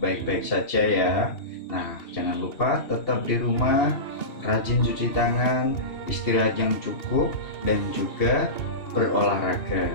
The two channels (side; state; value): right; late; 2.8 ms